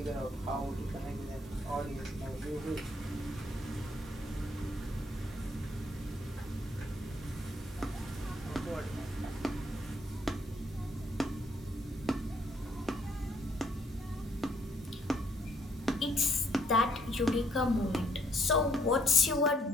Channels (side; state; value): both; normal; correlation 0.68